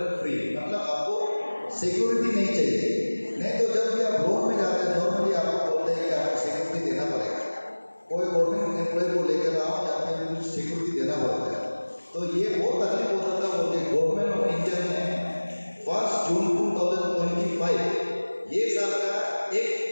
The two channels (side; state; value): both; inverted; correlation -1.00